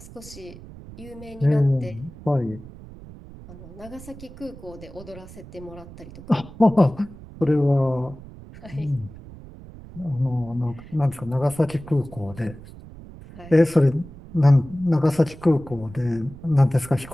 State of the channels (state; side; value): noise; right; rumble, 17 dB below the sound